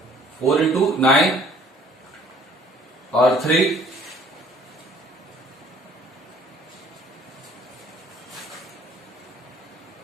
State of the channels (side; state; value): both; normal; correlation 0.55